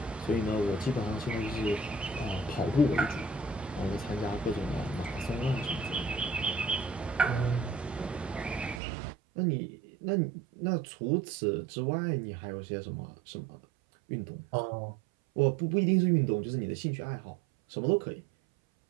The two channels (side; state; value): left; drops out; at 8.8 s